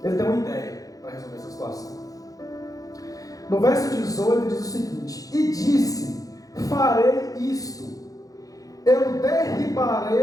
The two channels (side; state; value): right; late; 0.17 ms